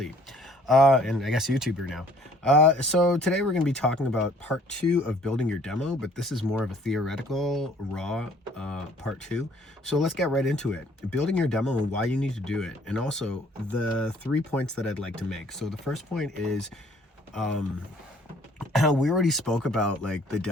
And I guess YouTuber now. So today we're going to be talking about part 2 of building your demo, but this is more of a theoretical, raw part 2. So let's get right into it. Building your demo and why you need to do it, and also the 3 points that I'd like to make. So the first point is, we already spoke about like the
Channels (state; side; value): normal; both; correlation 0.58